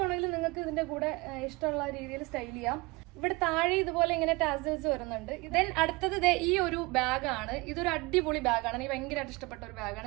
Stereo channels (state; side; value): quieter; left; 24.5 dB